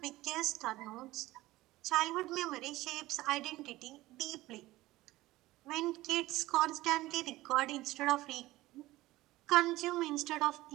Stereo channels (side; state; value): left; quieter; 17.9 dB